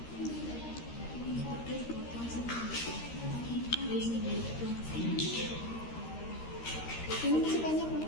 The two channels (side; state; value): right; late; 13 ms